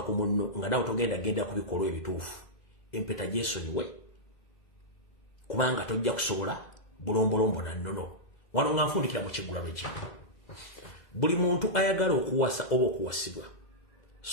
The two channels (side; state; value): right; late; 2.0 ms